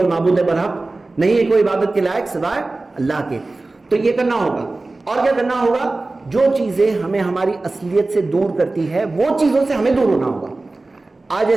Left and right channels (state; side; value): quieter; left; 3.2 dB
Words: معبود برحق، نہیں ہے کوئی عبادت کے لائق سوائے اللہ کے. تو یہ کرنا ہوگا. اور کیا کرنا ہوگا؟ جو چیزیں ہمیں ہماری اصلیت سے دور کرتی ہے وہ چیزوں سے ہمیں دور ہونا ہوگا. آج